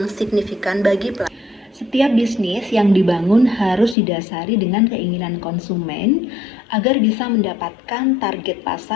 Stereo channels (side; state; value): right; drops out; at 4.0 s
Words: signifikan bagi pelanggan. Setiap bisnis yang dibangun harus didasari dengan keinginan konsumen agar bisa mendapatkan target